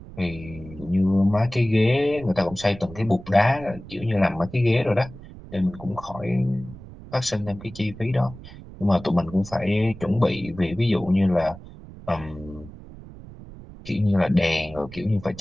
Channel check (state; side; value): noise; right; rumble, 16 dB below the sound